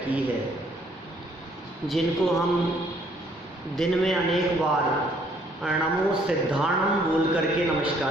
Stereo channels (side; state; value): both; normal; correlation 0.64